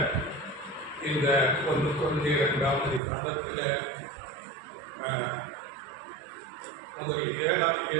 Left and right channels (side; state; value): left; drops out; at 3.0 s